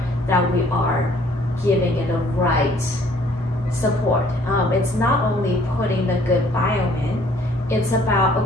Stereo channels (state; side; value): normal; both; correlation 0.59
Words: that we are giving it the right support. It's not only putting the good biome in, it's about,